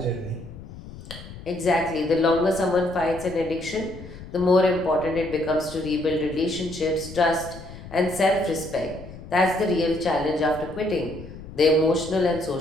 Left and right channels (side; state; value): left; noise; rumble, 15 dB below the sound